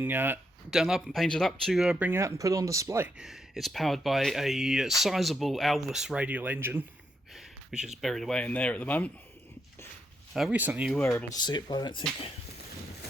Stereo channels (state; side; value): normal; both; correlation 0.80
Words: done up and painted up to bring out and put on display. It's powered by a sizable Alvis radial engine, which is buried away in there at the moment. Recently you were able to see it, but I don't think...